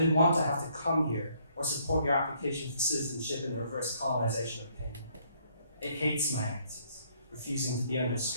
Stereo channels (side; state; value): both; inverted; correlation -0.67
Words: want to have to come here or support your application for citizenship in the reverse colonization of pain. It hates my answers, refusing to be under